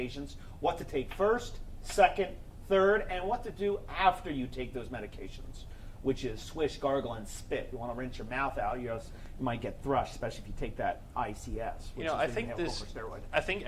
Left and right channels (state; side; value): identical; both; correlation 1.00